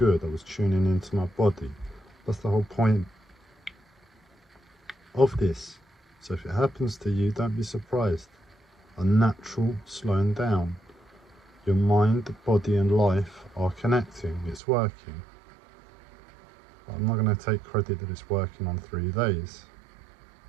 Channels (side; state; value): left; drops out; at 14.6 s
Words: I was tuning into my body. That's the whole point of this. So if it happens to you, don't be surprised. A natural slowing down. Your mind, body and life are connecting. It's working. But I'm not going to take credit that it's working on 3 days.